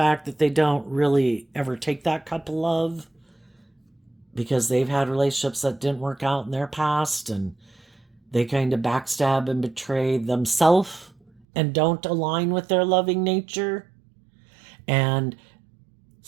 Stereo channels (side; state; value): left; drops out; at 11.5 s